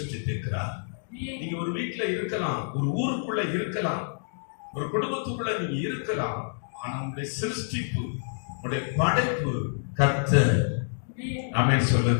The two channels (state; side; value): silent; right; digital silence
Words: நீங்க ஒரு வீட்டுல இருக்கலாம், ஒரு ஊருக்குள்ள இருக்கலாம், ஒரு குடும்பத்துக்குள்ள நீங்க இருக்கலாம். ஆனா உங்களுடைய சிருஷ்டிப்பு, உங்களுடைய படைப்பு கர்த்தர். ஆமென்